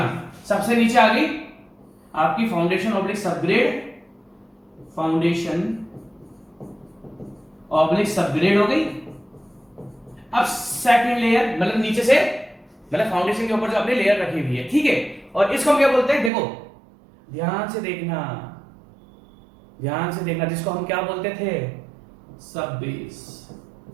सबसे नीचे आ गई आपकी foundation oblique subgrade, foundation oblique subgrade हो गई। अब सेकंड लेयर, मतलब नीचे से, मतलब फाउंडेशन के ऊपर जो आपने लेयर रखी हुई है, ठीक है, और इसको हम क्या बोलते हैं, देखो ध्यान से देखना, ध्यान से देखना, जिसको हम क्या बोलते थे, सब बेस।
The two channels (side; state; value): left; drops out; at 16.3 s